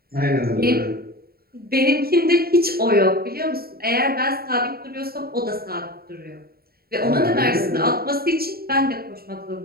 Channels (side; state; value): left; late; 0.44 ms